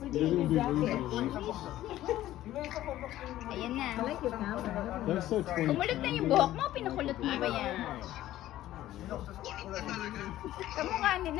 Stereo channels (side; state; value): right; quieter; 14.1 dB